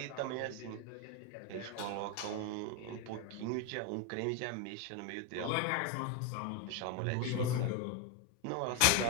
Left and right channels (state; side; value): different; both; correlation 0.02